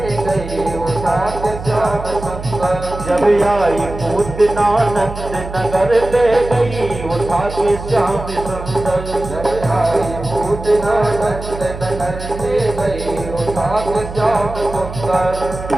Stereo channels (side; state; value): right; noise; hum, 10 dB below the sound